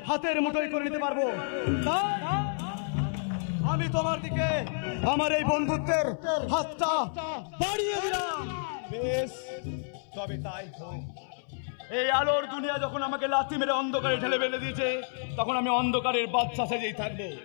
হাতের মুঠোয় করে নিতে পারবো। আমি তোমার দিকে আমার এই বন্ধুত্বের হাতটা বাড়িয়ে দিলাম। বেশ, তবে তাই হোক। এই আলোর দুনিয়া যখন আমাকে লাথি মেরে অন্ধকারে ঠেলে ফেলে দিয়েছে, তখন আমি অন্ধকারের বাদশা সেজেই থাকবো।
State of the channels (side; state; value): right; silent; 58 dB below the other